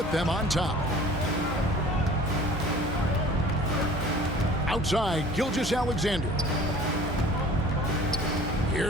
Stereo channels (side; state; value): both; normal; correlation 0.47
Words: them on top. Outside, Gilgeous-Alexander.